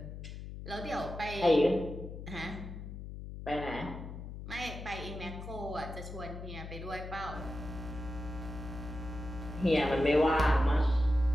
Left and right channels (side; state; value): left; noise; hum, 10 dB below the sound